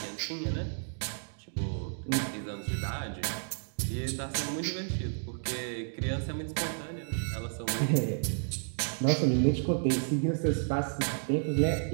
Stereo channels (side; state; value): left; silent; digital silence